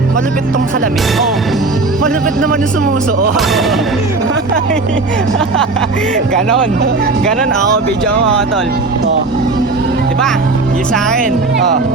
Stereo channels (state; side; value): quieter; left; 3.6 dB